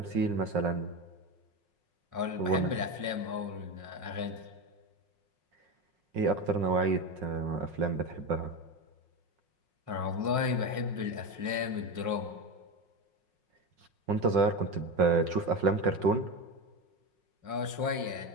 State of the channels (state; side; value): late; left; 5.5 ms